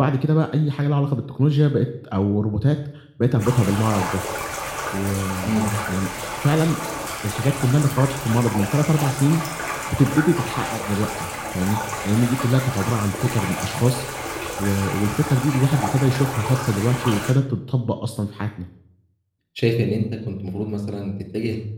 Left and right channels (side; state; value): both; identical; correlation 1.00